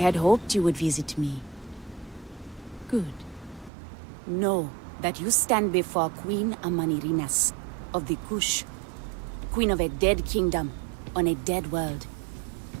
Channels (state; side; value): drops out; left; at 3.7 s